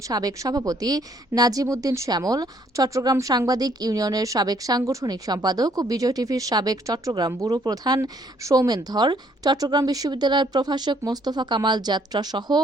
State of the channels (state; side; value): normal; both; correlation 0.65